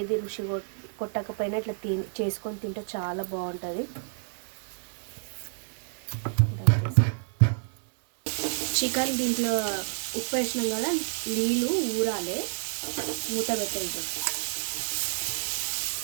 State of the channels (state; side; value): silent; left; 59 dB below the other